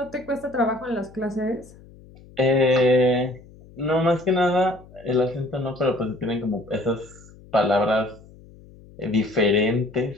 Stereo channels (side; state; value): left; noise; hum, 22 dB below the sound